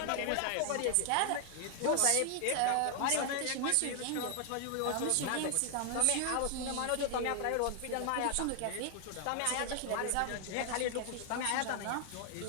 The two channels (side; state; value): both; different; correlation 0.00